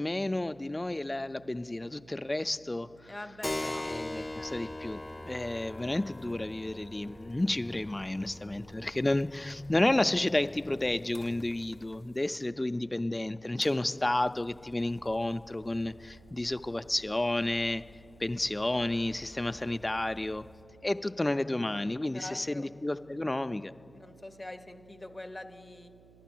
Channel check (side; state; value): right; noise; hum, 24 dB below the sound